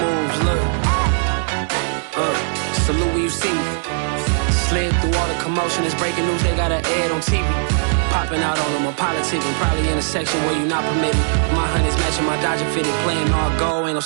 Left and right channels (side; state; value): left; silent; 66 dB below the other